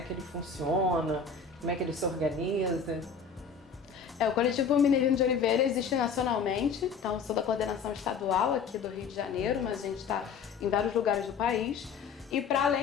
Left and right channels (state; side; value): quieter; right; 5.8 dB